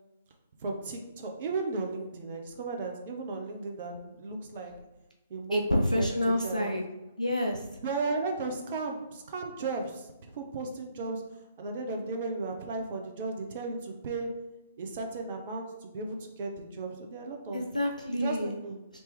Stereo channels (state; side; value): inverted; both; correlation -0.71